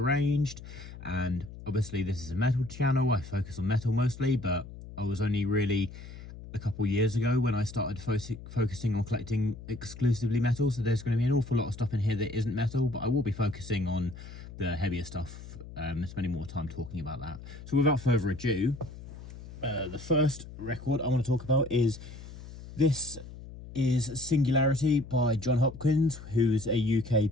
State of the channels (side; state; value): left; noise; hum, 14 dB below the sound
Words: And obviously this is a metal channel, I focus on metal mostly, but I was only really a couple years ago when I started focusing on collecting exclusively metal, so there's going to be an awful lot of stuff in here that isn't metal, but I will be focusing on the heavier stuff, spending more time talking about that. So without further ado, the first record I want to talk about is Singularity by John Hopkins, who's a UK